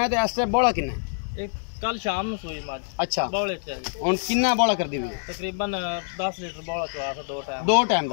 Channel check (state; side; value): silent; right; digital silence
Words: ਹੈ ਤੇ ਇਸ ਟਾਈਮ ਬੋਲਾ ਕਿੰਨਾ ਇਹ ਕੱਲ ਸ਼ਾਮ ਨੂੰ ਸੂਈ ਮੱਝ ਅੱਛਾ ਬੌਲੇ ਚ ਜੀ ਹੁਣ ਕਿੰਨਾ ਬੋਲਾ ਕਰਦੀ ਵੀ ਹੈ ਤਕਰੀਬਨ 10 ਲੀਟਰ ਬੌਲਾ ਚਵਾ ਕੇ 2 ਟਾਈਮ 2 ਟਾਈਮ